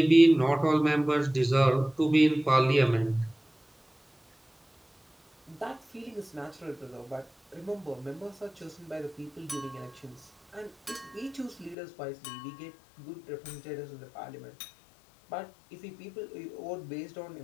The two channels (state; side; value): drops out; right; at 11.8 s